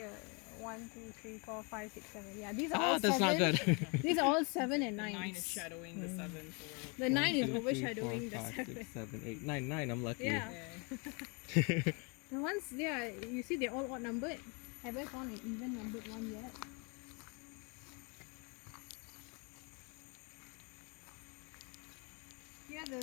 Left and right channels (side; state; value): right; quieter; 32.7 dB